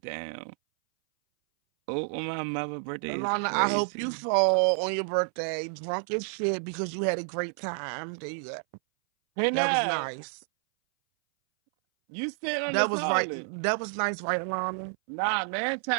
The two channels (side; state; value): left; silent; 58 dB below the other